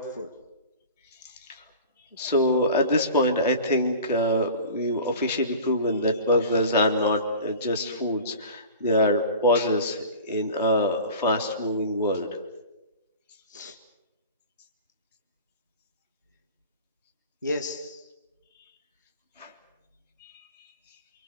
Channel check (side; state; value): both; inverted; correlation -0.38